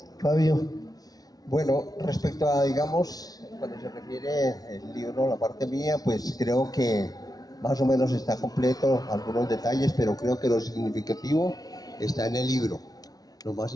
Fabio. Bueno, respecto a, digamos, cuando se refiere el libro, la parte mía, pues creo que más o menos está completo, algunos detalles, pero creo que lo significativo está en el libro. Lo más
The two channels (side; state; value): right; late; 0.18 ms